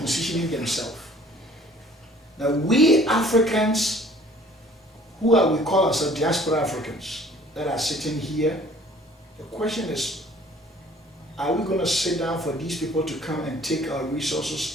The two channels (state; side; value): normal; both; correlation 0.54